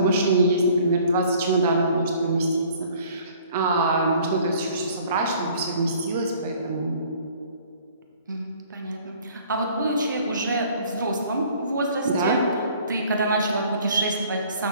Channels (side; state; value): both; inverted; correlation -0.54